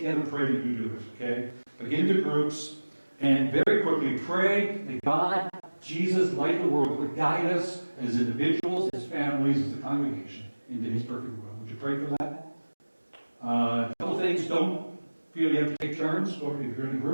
and pray, you do it, okay? But get into groups, and very quickly pray that God, Jesus, light of the world, would guide us as individuals, as families, as a congregation, into His perfect will. Would you pray for that? A couple things, don't feel you have to take turns, or if you're in a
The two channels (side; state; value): both; inverted; correlation -1.00